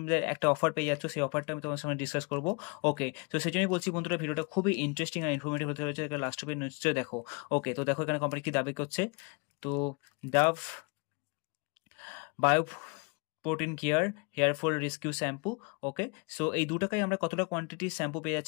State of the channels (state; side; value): quieter; right; 31.7 dB